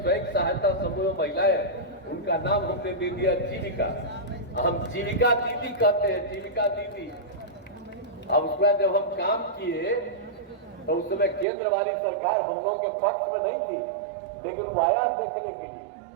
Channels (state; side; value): drops out; left; at 11.5 s